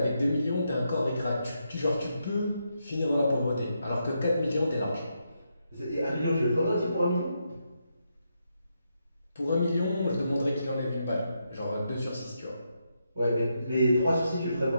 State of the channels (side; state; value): both; inverted; correlation -0.82